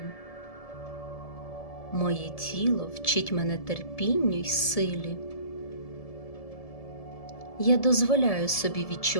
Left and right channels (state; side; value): late; right; 1.7 ms